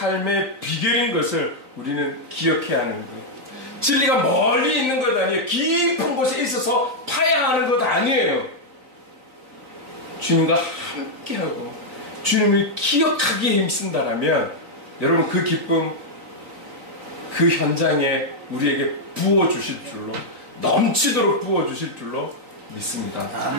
비결인 것을 우리는 기억해야 하는 거예요. 진리가 멀리 있는 것 아니에요. 깊은 곳에 있어서 파야 하는 것 아니에요. 주님과 함께하고 주님을 기억하기에 힘쓴다라면 여러분, 그 기쁨, 그 현장에 우리에게 부어주실 줄로, 넘치도록 부어주실 줄로 믿습니다.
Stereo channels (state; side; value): late; left; 3.9 ms